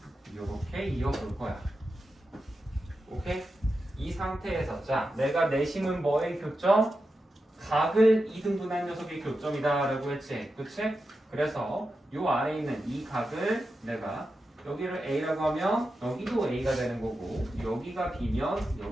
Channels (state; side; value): normal; both; correlation 0.90